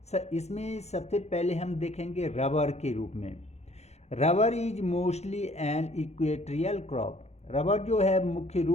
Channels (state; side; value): late; right; 0.32 ms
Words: इसमें सबसे पहले हम देखेंगे रबर के रूप में। Rubber is mostly an equatorial crop. Rubber जो है मुख्य